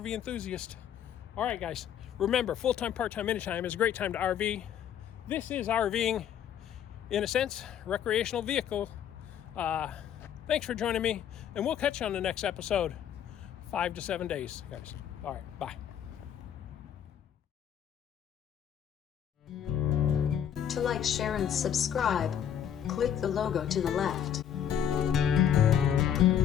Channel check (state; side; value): quieter; right; 9.3 dB